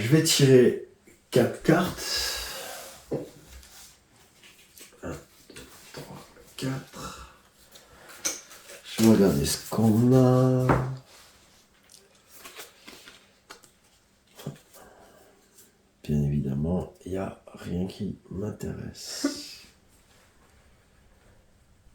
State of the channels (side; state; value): both; identical; correlation 1.00